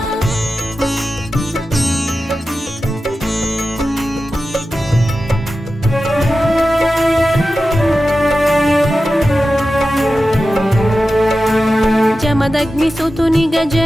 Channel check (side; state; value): both; normal; correlation 0.93